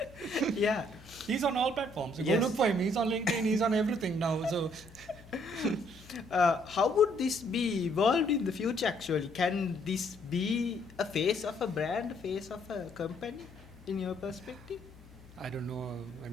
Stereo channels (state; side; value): noise; left; hum, 22 dB below the sound